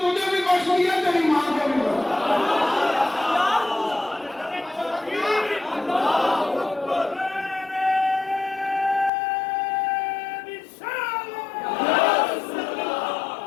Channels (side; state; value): right; drops out; at 9.1 s